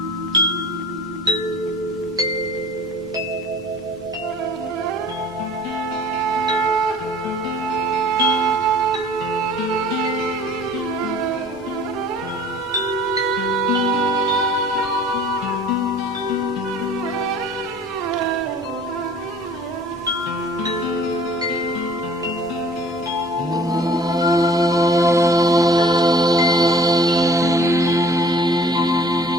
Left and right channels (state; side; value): normal; both; correlation 0.49